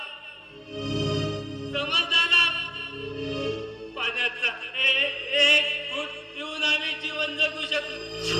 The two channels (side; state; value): both; identical; correlation 1.00